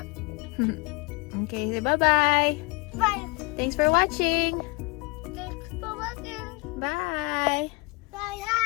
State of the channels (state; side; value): quieter; right; 26.6 dB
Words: Okay, say bye-bye. Bye. Thanks for watching. Thanks for watching. Bye. Bye.